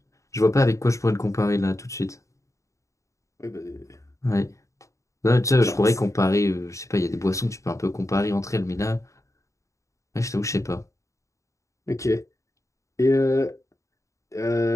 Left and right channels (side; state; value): right; late; 0.15 ms